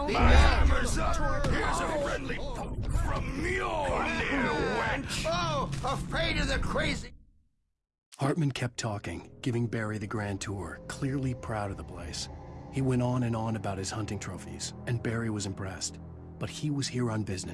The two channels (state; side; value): identical; both; correlation 1.00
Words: The hammer's up. Here's a friendly poke from Mjolnir, wench. Oh, afraid of the crazy. Hartman kept talking, giving Barry the grand tour, clearly proud of the place. He went on and on about his hunting trophies, and Barry was impressed. But he was here on